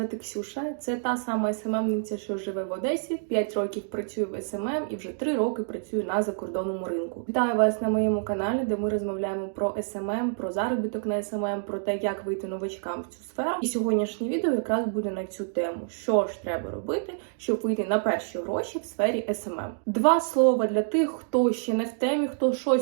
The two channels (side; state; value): left; silent; digital silence